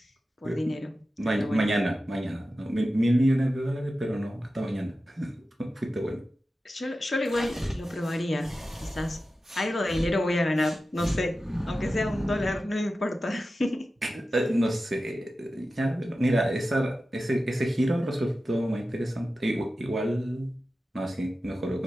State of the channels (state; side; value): normal; both; correlation 0.93